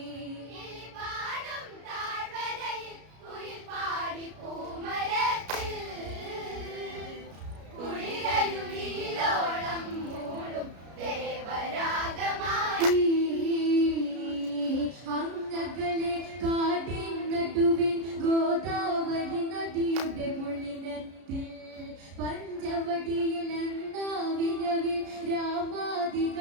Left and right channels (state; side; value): late; left; 33 ms